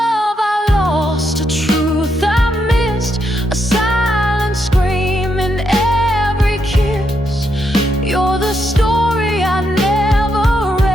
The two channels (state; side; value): normal; both; correlation 0.80